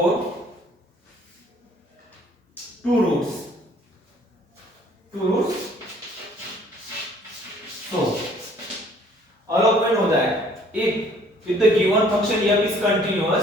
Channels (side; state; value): both; normal; correlation 0.58